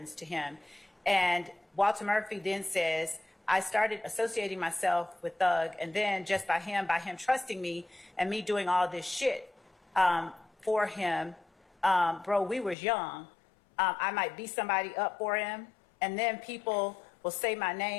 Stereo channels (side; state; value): right; drops out; at 12.8 s